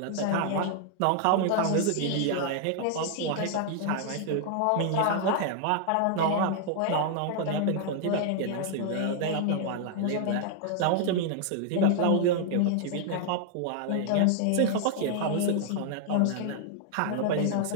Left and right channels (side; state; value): both; different; correlation 0.00